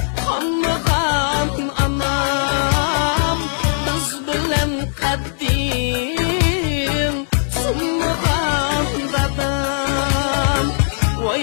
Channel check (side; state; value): right; silent; digital silence